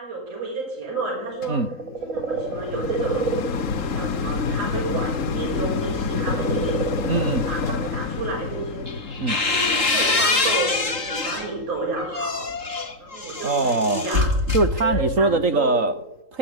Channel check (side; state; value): left; late; 3.8 ms